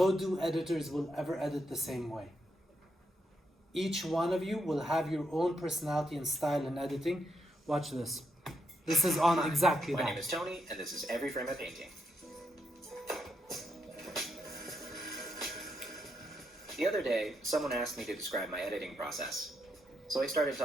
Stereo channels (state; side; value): normal; both; correlation 0.79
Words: two editors will ever edit the same way. Each one of you will have your own personality and style in editing. Watch this. This is on exactly that. My name is Tony, and this is Every Frame a Painting. The other day, someone asked me to describe my editing process. So I started